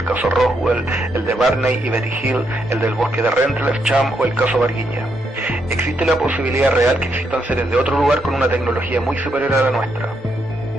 caso Roswell, el de Barney y Betty Hill, el del bosque de Rendlesham o el caso Varginha. Existe la posibilidad real que existan seres de otro lugar con una tecnología muy superior a la nuestra.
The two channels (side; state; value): both; normal; correlation 0.78